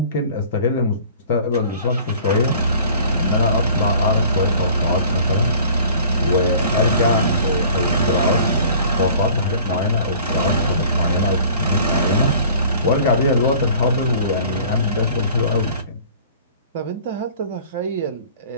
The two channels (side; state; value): both; inverted; correlation -0.49